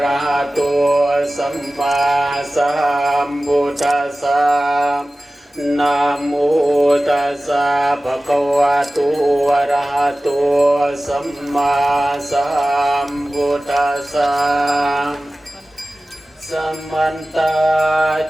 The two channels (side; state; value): both; normal; correlation 0.96